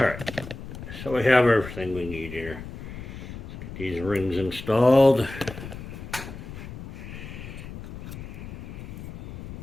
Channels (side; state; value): left; noise; rumble, 11 dB below the sound